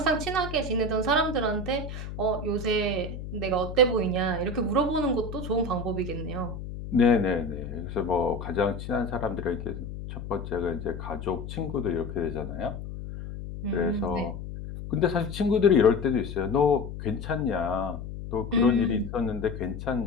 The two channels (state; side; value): noise; left; hum, 8 dB below the sound